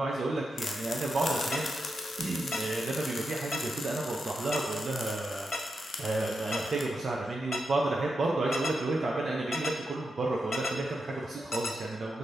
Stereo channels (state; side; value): normal; both; correlation 0.87